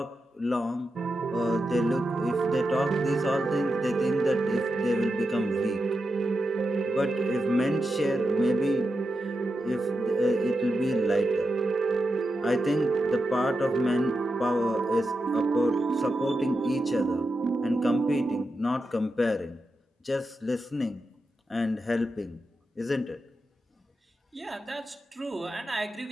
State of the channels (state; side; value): normal; both; correlation 0.88